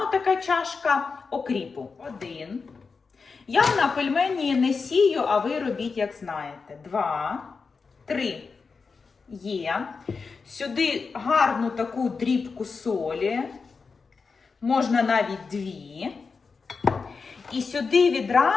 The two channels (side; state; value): right; quieter; 4.8 dB